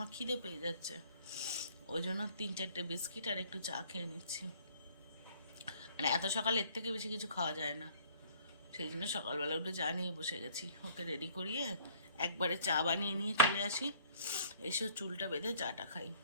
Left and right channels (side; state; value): both; inverted; correlation -0.56